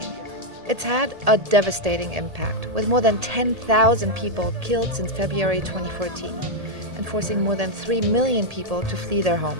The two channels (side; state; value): left; late; 1.8 ms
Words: It's had a devastating impact, with more than 10,000 people killed since February 2014, and forcing more than 3 million people to flee their